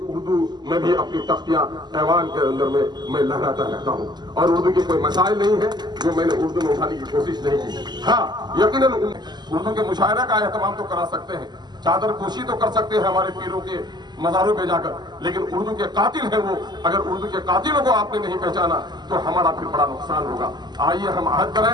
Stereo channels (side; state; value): left; late; 0.21 ms